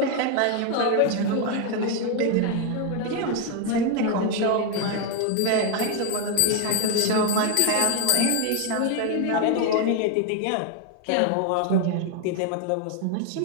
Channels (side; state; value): both; different; correlation 0.01